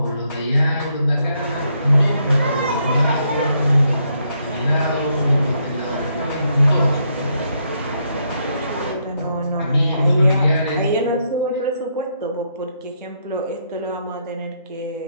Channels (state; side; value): inverted; both; correlation -0.75